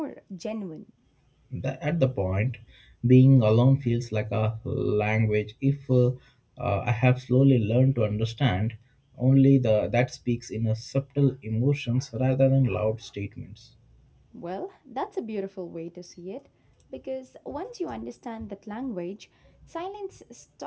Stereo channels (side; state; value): both; identical; correlation 1.00